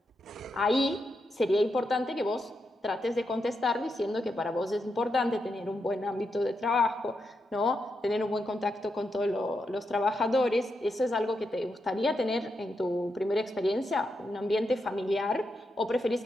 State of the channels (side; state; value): both; normal; correlation 0.85